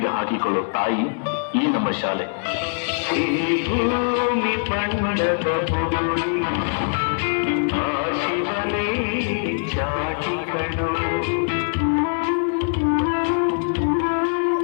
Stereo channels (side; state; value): right; silent; digital silence